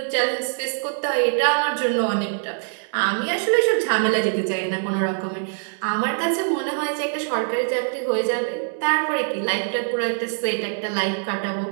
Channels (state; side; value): silent; left; digital silence